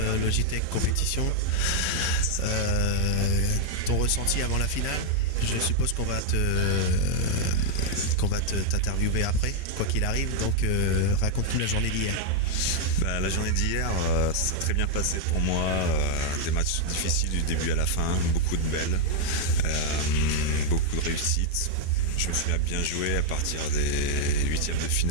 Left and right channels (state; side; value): normal; both; correlation -0.01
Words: Logitech Compétition. Ton ressenti avant la finale? Je suppose qu'on va t'interviewer après, quoi qu'il arrive. Donc raconte-nous la journée d'hier. La journée d'hier, ça s'est très bien passé pour moi. Des matchs difficiles du début à la fin, beaucoup de belles, beaucoup de réussites. Je me suis bien joué à partir des huitièmes de